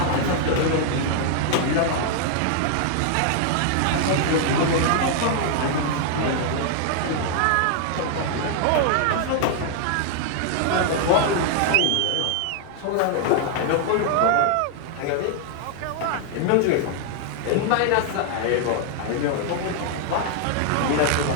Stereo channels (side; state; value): both; different; correlation 0.00